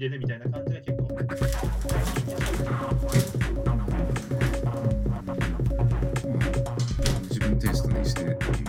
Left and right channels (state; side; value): identical; both; correlation 1.00